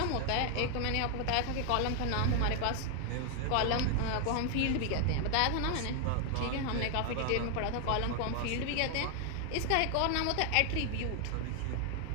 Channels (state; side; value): different; both; correlation 0.00